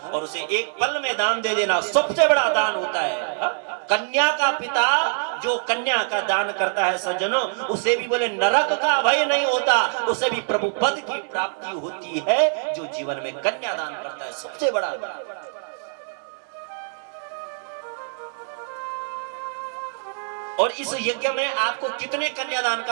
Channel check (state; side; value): silent; left; 62 dB below the other